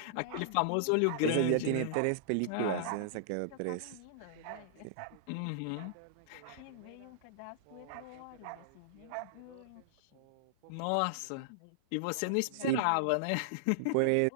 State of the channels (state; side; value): different; both; correlation -0.01